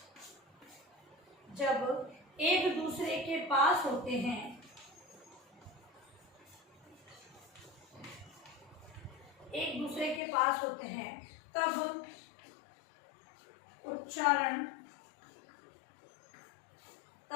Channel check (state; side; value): drops out; right; at 10.2 s